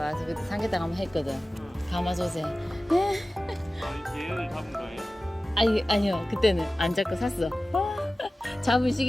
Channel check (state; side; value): normal; both; correlation 0.96